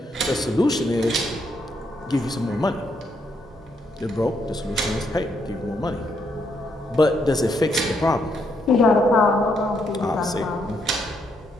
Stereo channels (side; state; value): both; normal; correlation 0.75